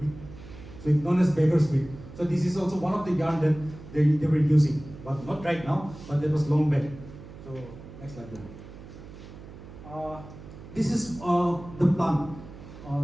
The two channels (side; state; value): right; noise; hum, 16 dB below the sound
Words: wheat. So it's known as beggar's wheat. So this is also one of the yarn that they were using, but not right now, but that was long back. So next slide. This is the plant,